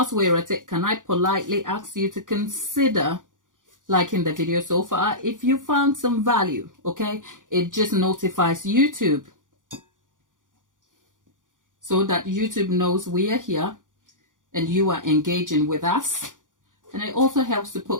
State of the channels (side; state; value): left; late; 0.88 ms